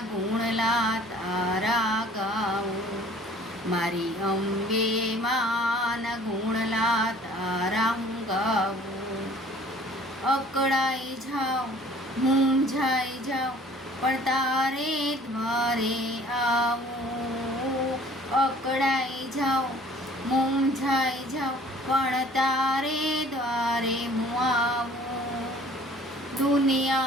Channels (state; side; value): normal; both; correlation 0.52